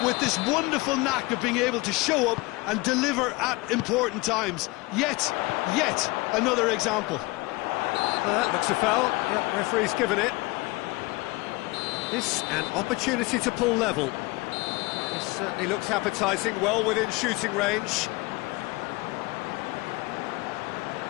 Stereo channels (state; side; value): quieter; right; 23.0 dB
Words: with this wonderful knack of being able to show up and deliver at important times. Yet another example. That looks a foul. Yeah, referee's given it. This an opportunity to pull level. This certainly looks appetising, well within shooting range.